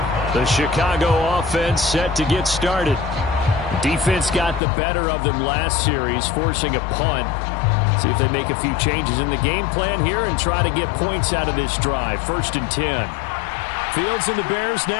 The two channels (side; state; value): right; drops out; at 4.6 s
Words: The Chicago offense set to get started. Defense got the better of them last series, forcing a punt. See if they make a few changes in the game plan here and try to get points out of this drive. 1st and 10. Fields and the Bears